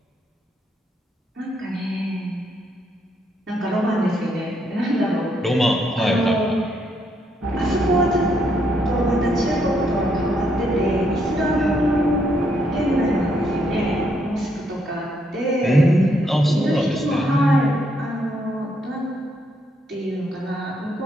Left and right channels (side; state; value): both; normal; correlation 0.75